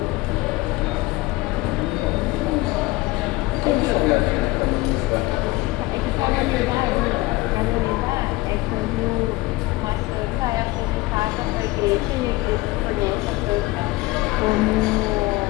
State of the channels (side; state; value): right; quieter; 20.6 dB